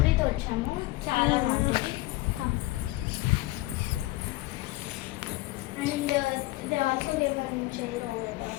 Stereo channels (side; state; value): right; quieter; 19.5 dB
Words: వచ్చాము, చాలా బాగుంటుంది. And they also gave one chair over